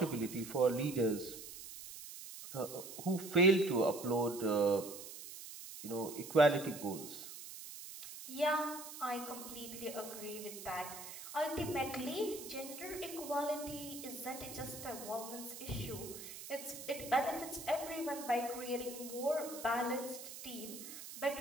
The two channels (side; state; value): right; noise; hiss, 11 dB below the sound